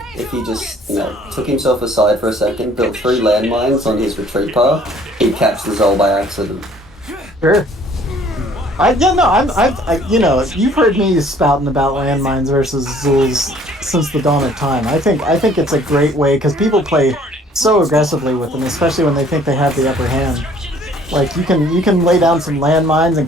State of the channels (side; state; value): both; normal; correlation 0.57